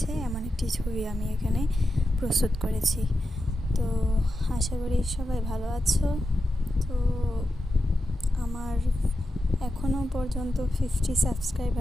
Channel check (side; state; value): both; normal; correlation 0.89